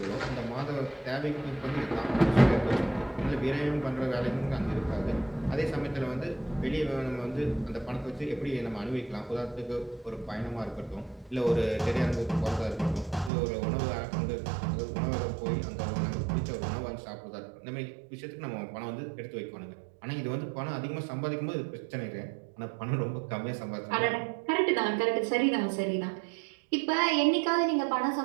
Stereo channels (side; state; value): left; drops out; at 13.3 s